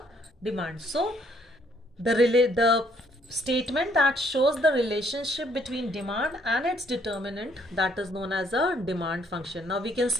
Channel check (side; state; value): both; normal; correlation 0.67